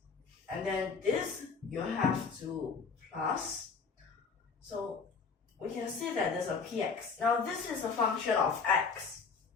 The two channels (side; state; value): right; quieter; 5.2 dB